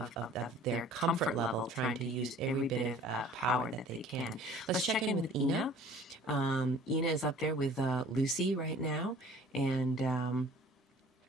their comfort level, trying to use every bit of power that they can. Let's check in with Ina. Ina is up there with Lucy right now, and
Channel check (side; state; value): both; normal; correlation 0.49